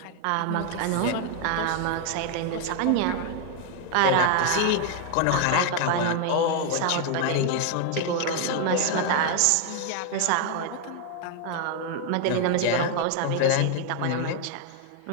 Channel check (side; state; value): both; different; correlation 0.00